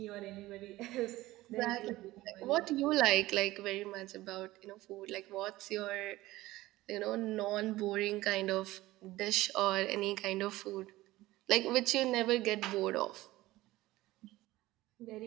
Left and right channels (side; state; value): left; quieter; 17.6 dB